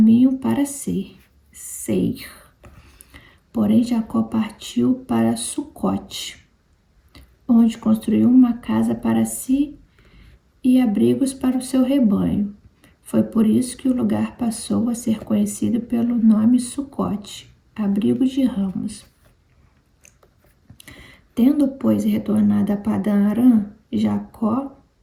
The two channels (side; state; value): both; identical; correlation 1.00